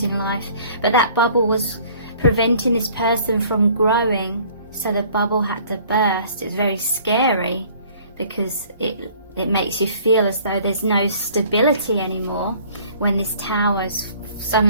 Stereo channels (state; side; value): inverted; both; correlation -0.54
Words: in life. But that bubble was preventing this person from growing, so the bubble had to burst. It's very scary because it makes you feel as though there's no stability anymore when this tower's